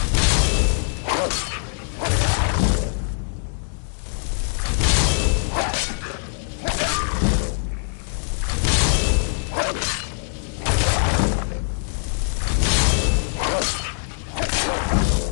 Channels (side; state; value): right; silent; digital silence